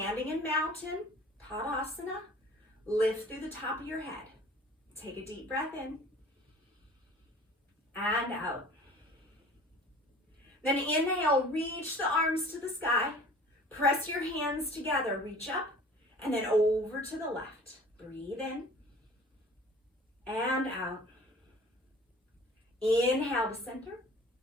in mountain, Tadasana, lift through the top of your head. Take a deep breath in and out. Then inhale, reach the arms to the sky. Press your hands together, reach up, and then over to the left. Breathe in and out. Inhale to center.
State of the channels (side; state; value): both; normal; correlation 0.46